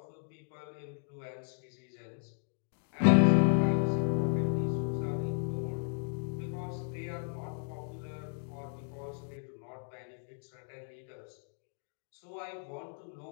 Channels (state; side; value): silent; right; 55 dB below the other